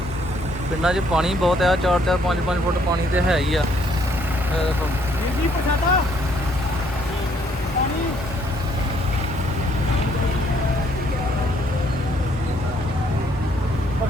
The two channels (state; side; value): normal; both; correlation 0.67